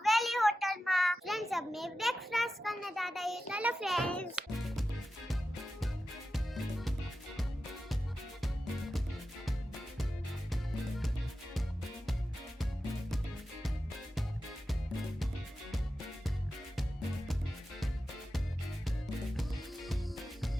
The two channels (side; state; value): both; normal; correlation 0.92